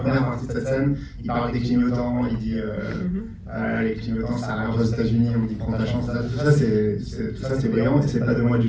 partie de cette scène, il parle des clignotants. Il dit les clignotants, ça arrive aux États-Unis. On dit prends ta chance. Tout ça, c'est brillant. Et c'est pas de moi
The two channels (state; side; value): identical; both; correlation 1.00